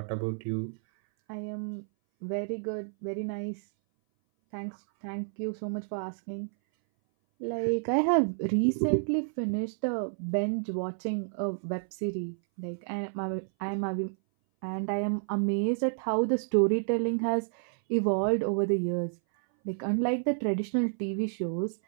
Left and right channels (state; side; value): silent; left; 58 dB below the other